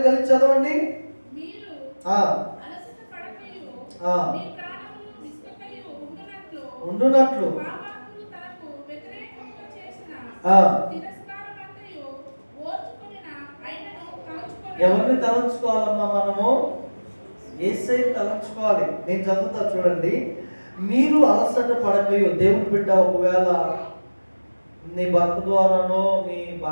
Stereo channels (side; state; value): both; inverted; correlation -1.00